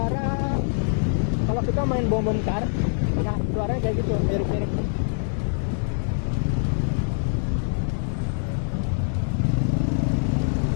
kalau kita main bom car, nah suaranya kayak gitu, mirip-mirip.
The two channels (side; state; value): right; silent; digital silence